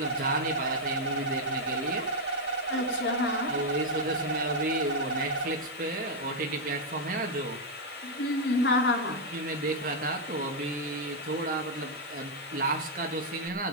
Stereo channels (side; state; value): right; noise; hiss, 25 dB below the sound